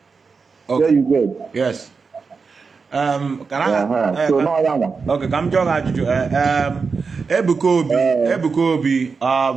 Okay. There you go. Yes. Can I? So no, okay. Come join Ajuju. Ebuko Obi.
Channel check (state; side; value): quieter; left; 4.9 dB